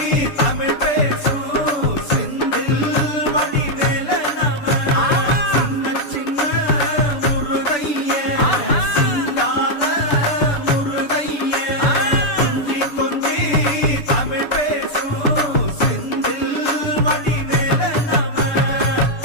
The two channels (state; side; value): late; right; 6.9 ms